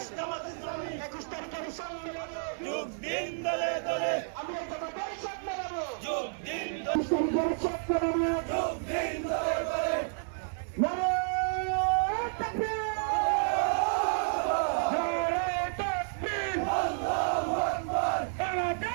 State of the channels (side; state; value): left; silent; digital silence